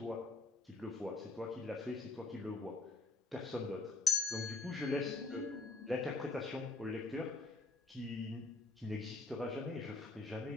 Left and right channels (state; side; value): quieter; right; 3.5 dB